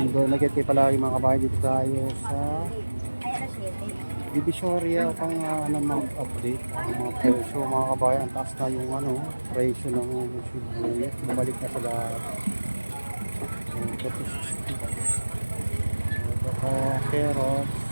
Nag-get kayo palagi mga kabayan, dito tayo sa Divisoria upang mag-update ang mga presyo mga kabayan. Ang taas na yung presyo ng sibuyas, bumalik na sa lahat. Carrots,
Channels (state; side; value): inverted; both; correlation -1.00